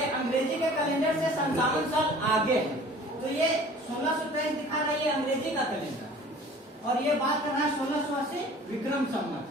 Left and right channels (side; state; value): both; normal; correlation 0.47